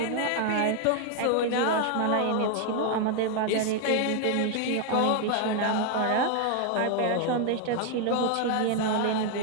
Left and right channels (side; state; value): both; different; correlation 0.00